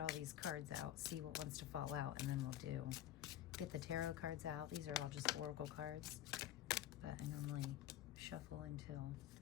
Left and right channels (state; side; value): quieter; right; 12.2 dB